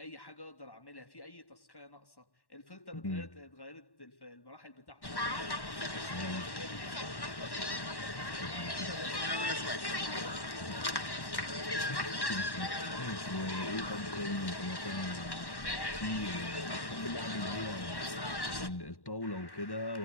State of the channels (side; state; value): right; late; 1.1 ms